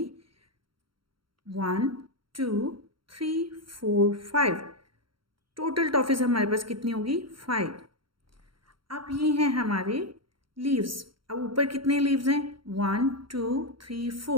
1 2 3 4 5. टोटल टॉफ़ीज़ हमारे पास कितनी होगी? 5. अब ये हैं हमारे लीव्स. अब ऊपर कितने लीव्स हैं? 1 2 3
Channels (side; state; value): left; late; 0.73 ms